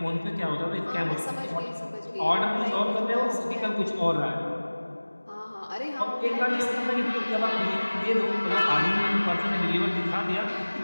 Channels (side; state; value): both; inverted; correlation -1.00